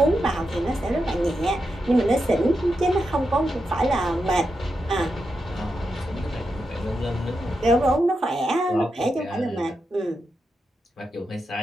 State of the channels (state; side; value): normal; both; correlation 0.87